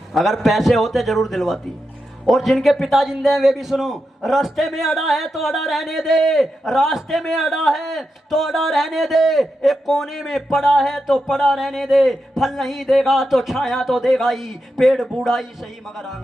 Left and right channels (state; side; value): normal; both; correlation 0.88